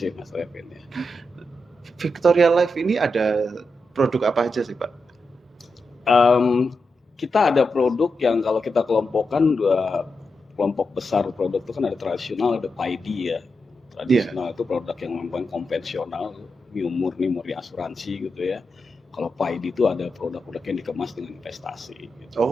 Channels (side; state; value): both; normal; correlation 0.87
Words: Mas Revin ya. Victoria Life ini ada produk apa aja sih Pak? Kita ada produk yang kalau kita kelompokkan 2 kelompok besar produk itu kan ada tradisional, ada PID ya. Tradisional itu produk yang memang konvensional, murni asuransi gitu ya. Kalau PID itu ada produk-produk yang dikemas dengan investasi. Gitu.